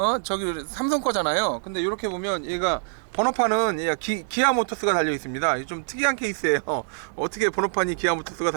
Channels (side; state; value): left; silent; digital silence